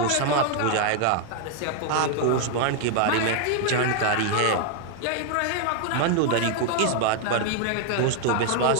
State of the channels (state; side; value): different; both; correlation 0.00